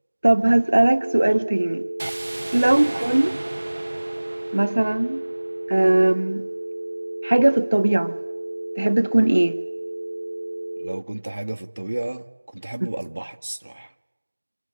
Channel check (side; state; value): both; inverted; correlation -1.00